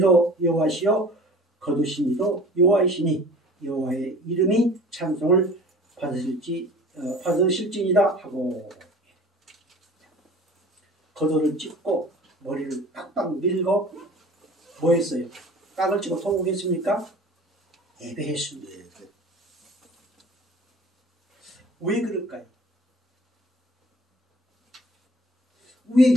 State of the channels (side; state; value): both; normal; correlation 0.44